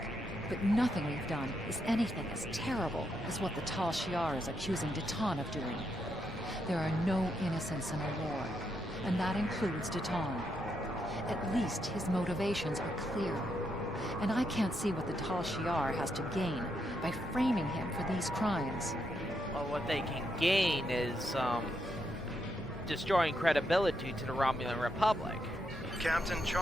But nothing we've done is anything as terrible as what the Tal Shiar is accusing Datan of doing. There are no innocents in a war, and that includes Datan. At least his motivations are clear. And I can't see what the Tal Shiar has to gain by framing him for these crimes. Well, what they can gain is, destroying credibility to the Romulan Republic. Captain,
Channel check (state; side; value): normal; both; correlation 0.80